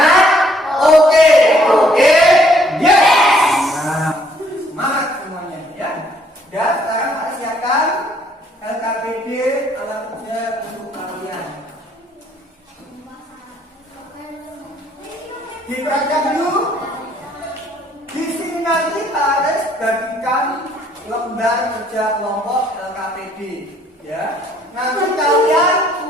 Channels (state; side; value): normal; both; correlation 0.65